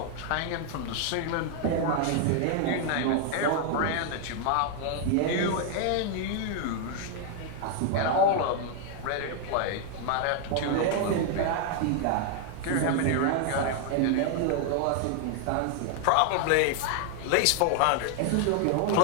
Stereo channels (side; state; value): both; different; correlation 0.00